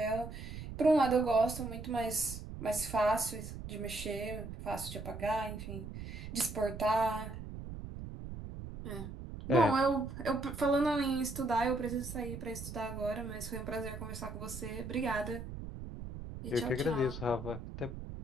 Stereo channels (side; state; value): right; noise; rumble, 9 dB below the sound